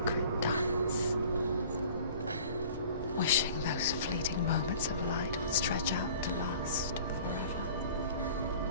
dance, wishing those fleeting moments of light would stretch out to last forever.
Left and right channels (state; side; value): inverted; both; correlation -0.47